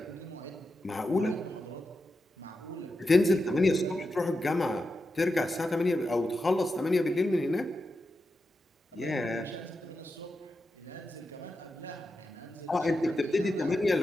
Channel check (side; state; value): both; normal; correlation 0.89